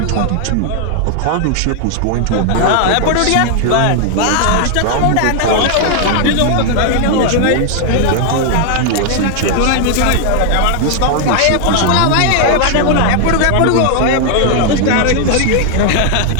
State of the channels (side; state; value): both; different; correlation 0.00